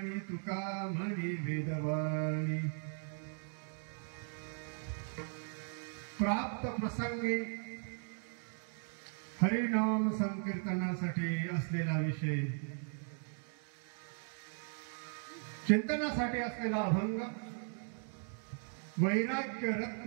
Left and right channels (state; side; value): silent; left; 53 dB below the other